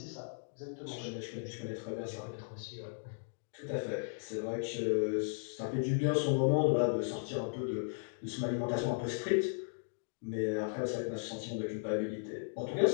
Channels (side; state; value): right; silent; digital silence